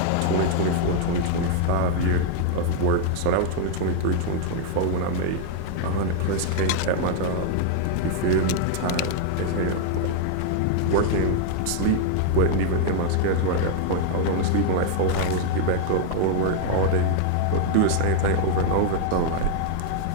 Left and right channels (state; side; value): different; both; correlation 0.00